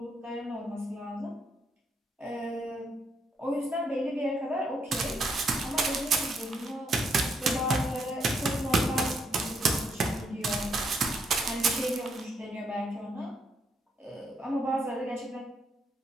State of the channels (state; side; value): normal; both; correlation 0.74